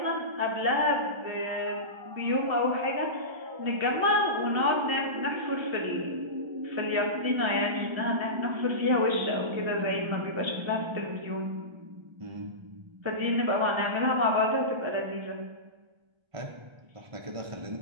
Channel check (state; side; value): late; left; 1.3 ms